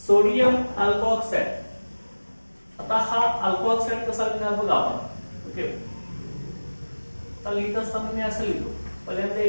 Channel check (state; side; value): inverted; both; correlation -1.00